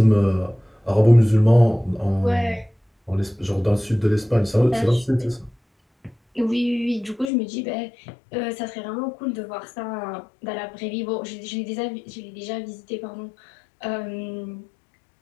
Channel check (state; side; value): drops out; right; at 7.3 s